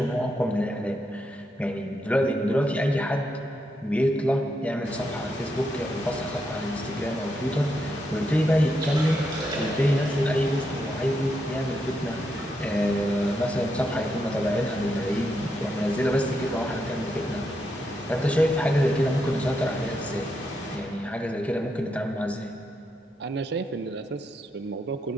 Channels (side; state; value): both; normal; correlation 0.82